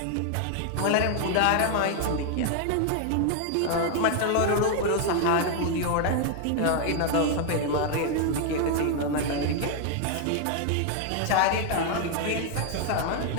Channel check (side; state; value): both; different; correlation 0.00